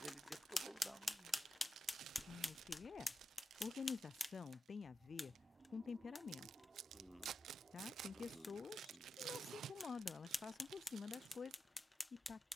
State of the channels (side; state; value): both; normal; correlation 0.91